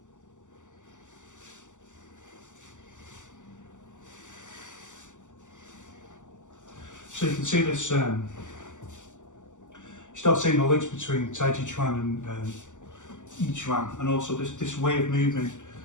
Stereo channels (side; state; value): right; late; 0.86 ms